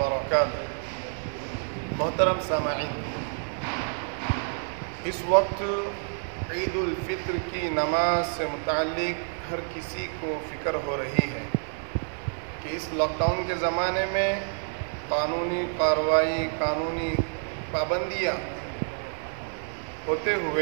محترم سامعین، اس وقت عید الفطر کی نماز سے متعلق ہر کسی کو فکر ہو رہی ہے کہ اس لاک ڈاؤن کے زمانے میں قانونی کارروائی، قانونی پابندیاں ہوتے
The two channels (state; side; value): silent; left; 55 dB below the other